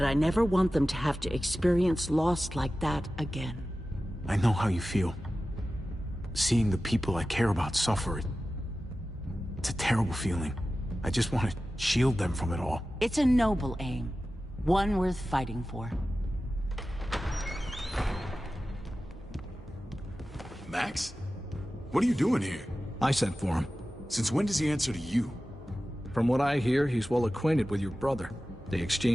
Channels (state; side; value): normal; both; correlation 0.95